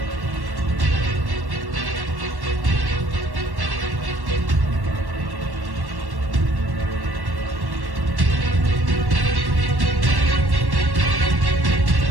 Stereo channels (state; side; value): late; left; 1.1 ms